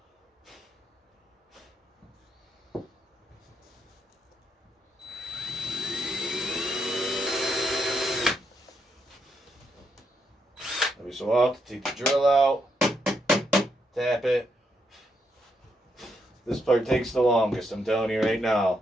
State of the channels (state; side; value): normal; both; correlation 0.79